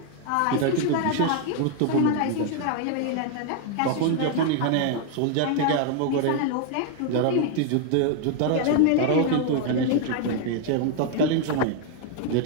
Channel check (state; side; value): different; both; correlation 0.00